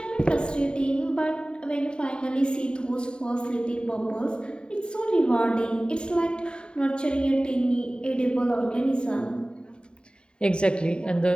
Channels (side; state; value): right; late; 0.050 ms